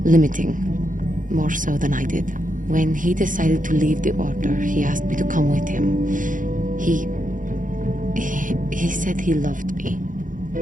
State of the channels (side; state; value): left; late; 0.38 ms